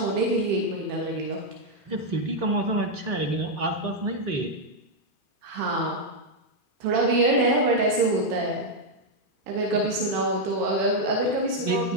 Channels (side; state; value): left; late; 2.4 ms